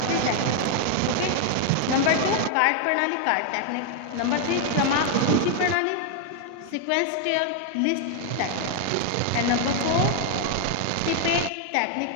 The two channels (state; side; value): different; both; correlation 0.00